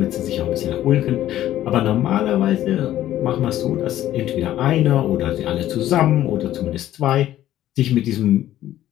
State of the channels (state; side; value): quieter; right; 13.1 dB